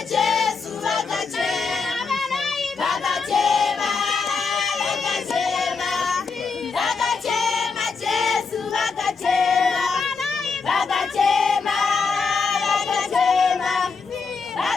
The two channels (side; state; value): right; quieter; 4.9 dB